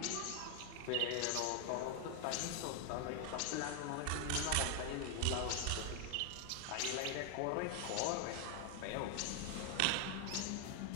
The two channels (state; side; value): different; both; correlation 0.00